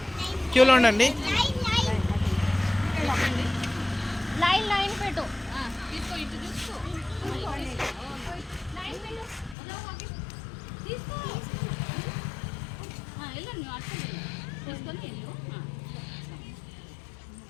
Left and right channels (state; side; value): drops out; right; at 9.6 s